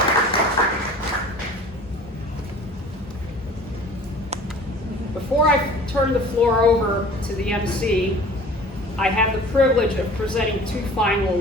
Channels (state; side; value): normal; both; correlation 0.45